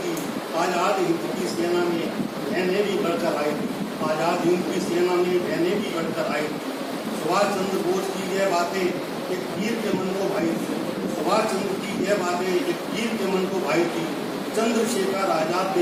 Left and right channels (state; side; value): identical; both; correlation 1.00